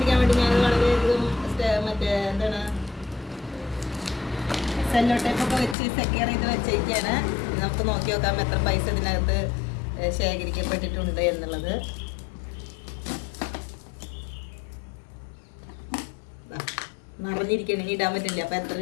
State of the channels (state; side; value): drops out; right; at 5.8 s